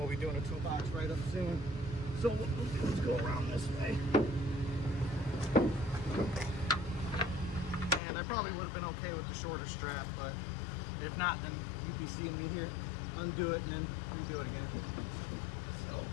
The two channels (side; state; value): right; drops out; at 8.0 s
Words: be doing a toolbox right up soon. So what we'll do is go around this way. And I probably would have been okay with the shorter strap, but if not, then you'd be seeing me here undo it and then redo it again. So.